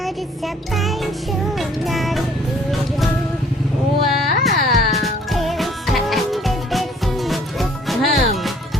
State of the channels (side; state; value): both; normal; correlation 0.58